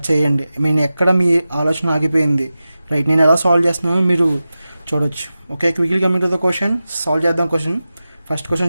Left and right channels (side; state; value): both; inverted; correlation -0.94